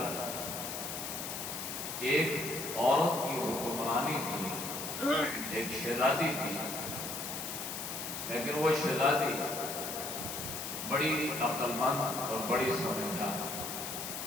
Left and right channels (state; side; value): noise; left; hiss, 5 dB below the sound